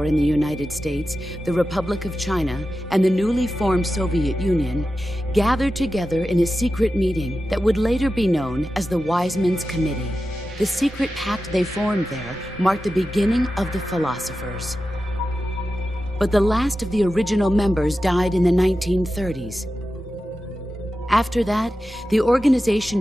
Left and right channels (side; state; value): both; normal; correlation 0.92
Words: in the United States, the Republic of China, and the newly formed Soviet Union gathered together in a secret meeting that would later be known as the Wise Men's Committee. The secret pact they formed there marked the beginning of the philosophers. But the last of the original members died in the 1930s. After that, the